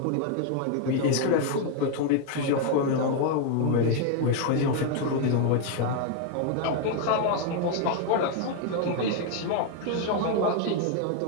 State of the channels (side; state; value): both; different; correlation 0.00